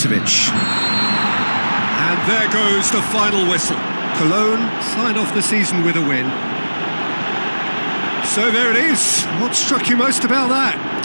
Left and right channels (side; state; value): both; inverted; correlation -1.00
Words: And there goes the final whistle. Cologne sign off the season with a win. So there it is. What struck you most about that?